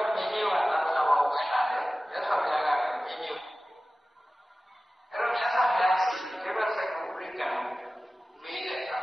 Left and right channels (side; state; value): both; normal; correlation 0.96